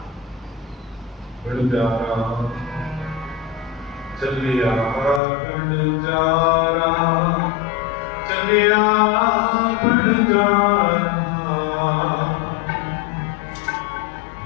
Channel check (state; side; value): drops out; right; at 5.2 s